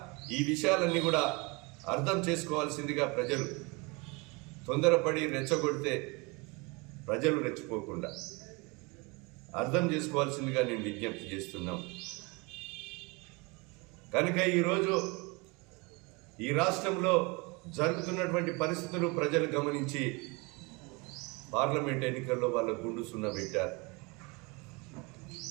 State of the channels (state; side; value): quieter; left; 27.8 dB